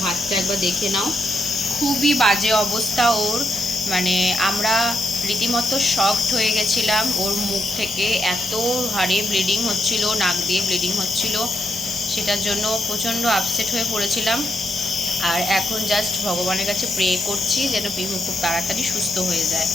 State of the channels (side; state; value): both; normal; correlation 0.79